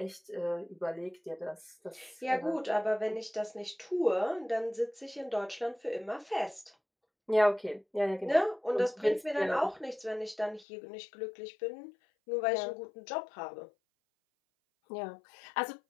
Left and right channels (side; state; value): right; drops out; at 10.7 s